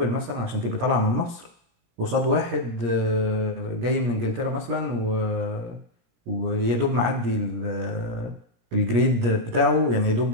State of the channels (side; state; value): left; late; 17 ms